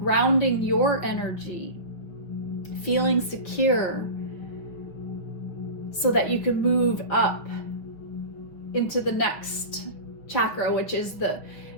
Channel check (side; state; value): right; late; 5.7 ms